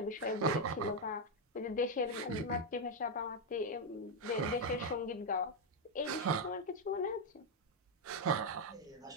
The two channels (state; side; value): normal; both; correlation 0.02